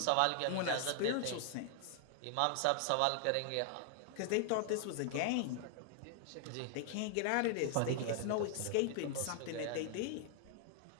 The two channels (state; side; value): different; both; correlation 0.00